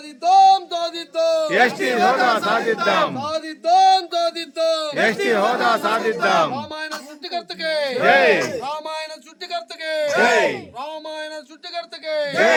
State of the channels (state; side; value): identical; both; correlation 1.00